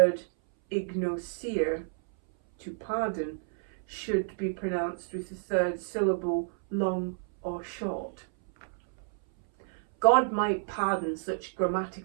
ignosir, to pardon, should be pronounced with the third syllable long or short? God might pardon such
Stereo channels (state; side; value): silent; left; 58 dB below the other